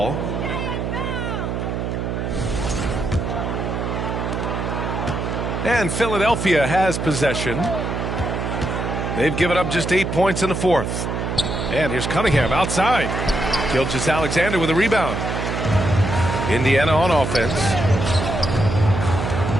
And Philadelphia has possession. They've given up just 8 points in the fourth. And here's Cunningham outside. Gilgeous-Alexander with a rebound. Indiana on offense.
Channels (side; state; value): right; noise; hum, 2 dB below the sound